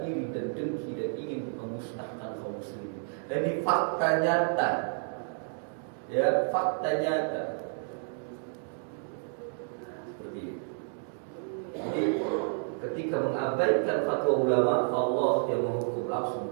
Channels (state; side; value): silent; left; 57 dB below the other